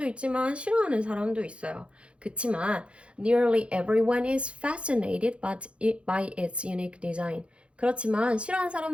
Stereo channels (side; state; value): left; late; 0.059 ms